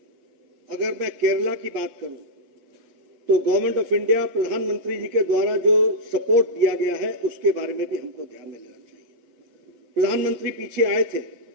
अगर मैं केरला की बात करूं तो गवर्नमेंट ऑफ इंडिया, प्रधानमंत्री जी के द्वारा जो सपोर्ट दिया गया है उसके बारे में भी हमको ध्यान में लेना चाहिए. प्रधानमंत्री पीछे आए थे,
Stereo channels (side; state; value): left; late; 7.8 ms